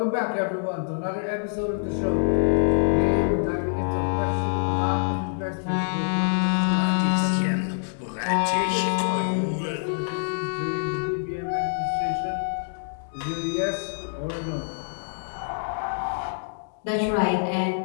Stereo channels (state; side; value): silent; right; digital silence